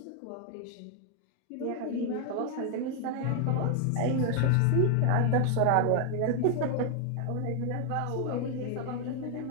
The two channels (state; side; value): different; both; correlation 0.01